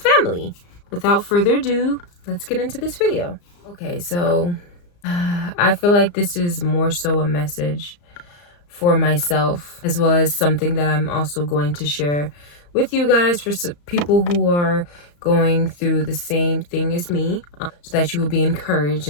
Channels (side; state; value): right; late; 34 ms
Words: Without further ado, let's get into this video. Okay, so I feel like this is more so a message for myself, as well as something that I'm also going to share with you guys for people who are going through the same thing as me, so that you will be encouraged